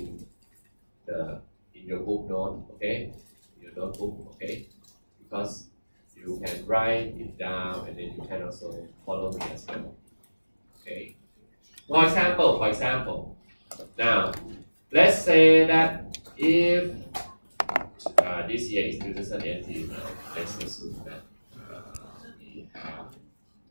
your book note, okay? Your notebook, okay? Because you can write it down and then you can also follow me as well, okay? For example, now let's say that if this year is 2018 now, let's assume that we have,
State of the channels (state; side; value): inverted; both; correlation -1.00